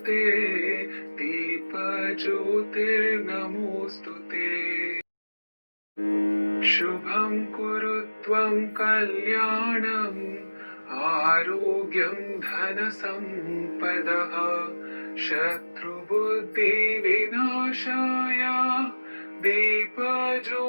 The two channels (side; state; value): both; inverted; correlation -1.00